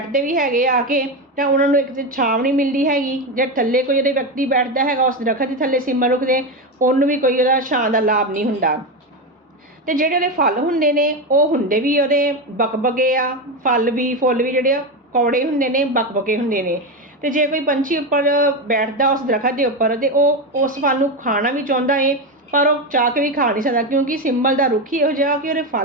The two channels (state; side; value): normal; both; correlation 0.14